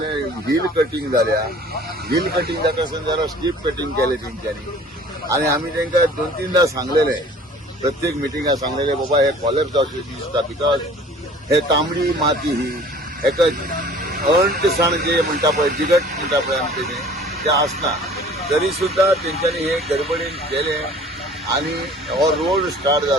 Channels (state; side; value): normal; both; correlation 0.49